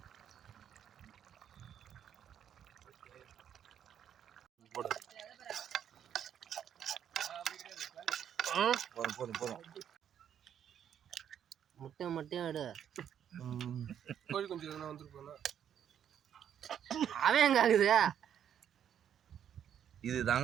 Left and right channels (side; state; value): left; quieter; 9.3 dB